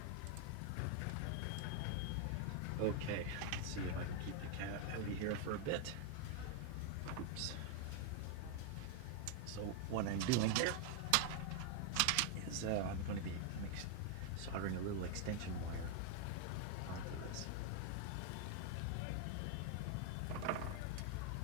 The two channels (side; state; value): both; different; correlation 0.00